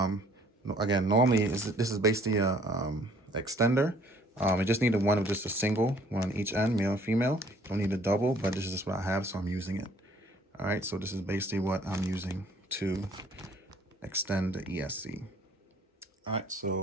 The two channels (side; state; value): both; normal; correlation 0.58